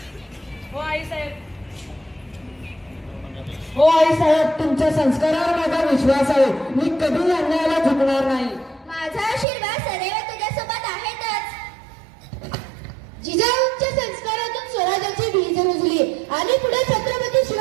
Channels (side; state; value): left; drops out; at 9.5 s